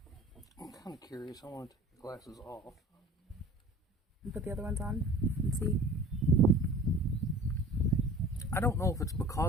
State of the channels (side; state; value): both; normal; correlation 0.43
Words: I'm kind of curious. I want to take the glasses off. and put the other ones on and see. I don't know if it's